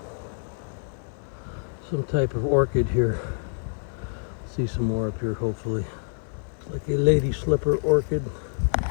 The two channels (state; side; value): silent; right; digital silence